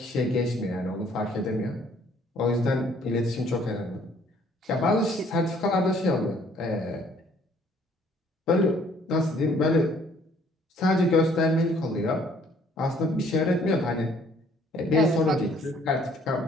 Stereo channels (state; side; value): normal; both; correlation 0.60